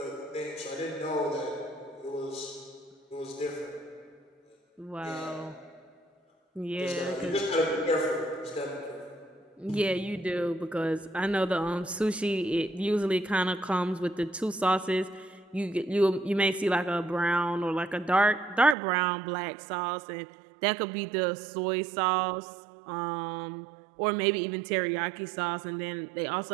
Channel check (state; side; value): drops out; left; at 18.8 s